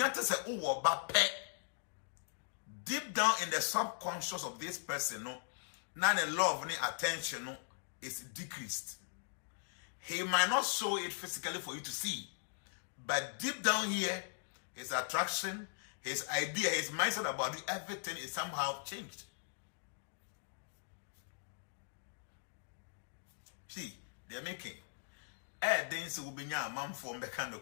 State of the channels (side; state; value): right; silent; digital silence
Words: say, oh, pet. Deep down in the subconscious of this person, no, now the love and attention no, is decreased. He might not show it physically for you to see, but deep down here, his attraction, his idea, his mindset about you, everything is somehow changed. See, they're making. Then so will be a man from the kind of